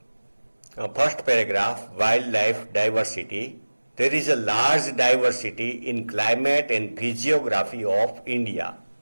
First paragraph, wildlife diversity. There is a large diversity in climate and physiography of India.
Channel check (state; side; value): inverted; both; correlation -1.00